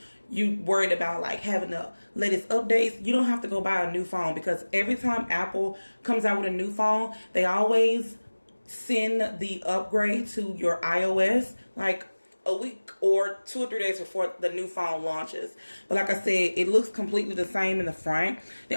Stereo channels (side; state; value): both; inverted; correlation -1.00